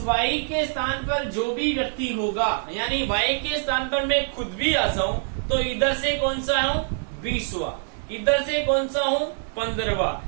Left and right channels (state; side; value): silent; left; digital silence